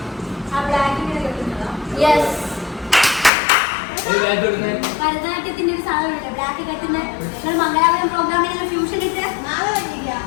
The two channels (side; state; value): right; drops out; at 3.3 s